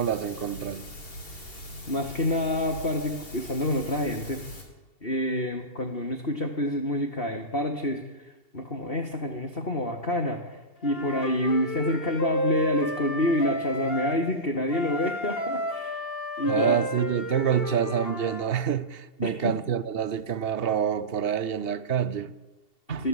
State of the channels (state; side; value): late; right; 2.7 ms